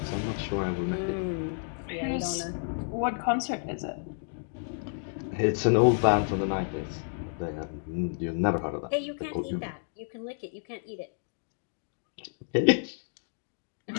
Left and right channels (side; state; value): right; silent; digital silence